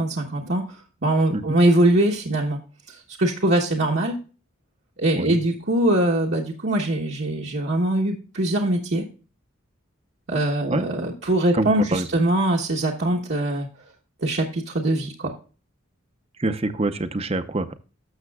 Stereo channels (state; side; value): normal; both; correlation 0.51